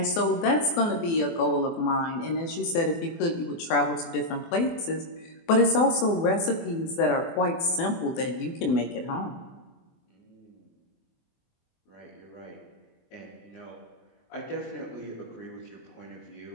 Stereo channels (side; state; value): right; late; 24 ms